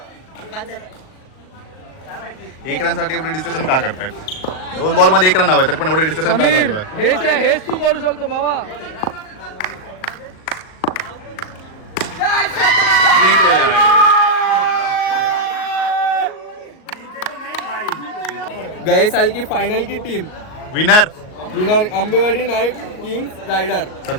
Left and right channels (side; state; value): right; late; 38 ms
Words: 1 रन साठी एवढे डिस्कशन का करतायत? 2 बॉल मध्ये 1 रन हवं तरी पण एवढे डिस्कशन का चालू आहे? हेच तू करू शकतो भावा. जिंकलेले आहे. गए साल की फाइनल की team winner Ambewadi knight kings rider.